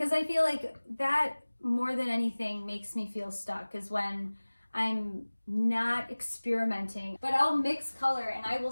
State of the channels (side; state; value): both; inverted; correlation -1.00